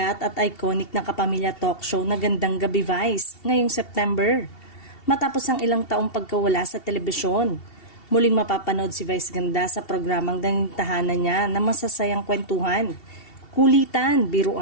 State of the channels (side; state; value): right; late; 2.7 ms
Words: at iconic na kapamilya talk show na Gandang Gabi Vice ngayong September. Matapos ang ilang taong pagkawala sa telebisyon, muling mapapanood si Vice Ganda sa programang tahanan niya na masasayang kwentuhan, kulitan,